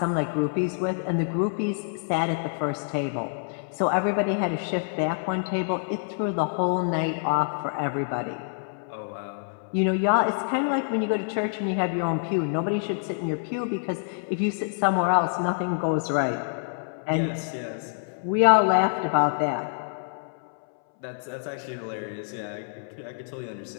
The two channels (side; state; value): right; silent; 60 dB below the other